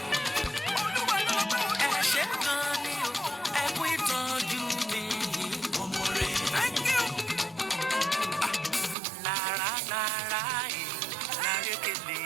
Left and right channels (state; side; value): drops out; left; at 9.0 s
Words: Ẹ ṣé gan ni o, ẹ kú ìtọ́jú mi. Mo mọ̀re. Lára lára ẹ̀ lárékèlè.